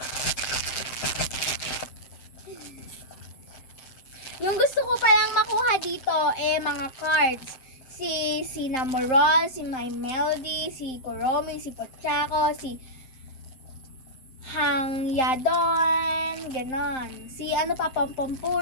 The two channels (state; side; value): late; right; 7.7 ms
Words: Yung gusto ko palang makuha dito mga cards. Si Cinnamoroll, si My Melody, si Kuromi, si Pochako, si Hangyadon, ganon. Si